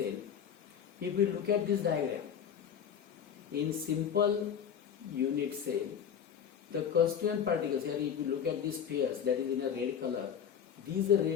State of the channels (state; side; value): quieter; right; 8.2 dB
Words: if we look at this diagram, in simple unit cell, the constituent particles, here if you look at these spheres that is in a red color, these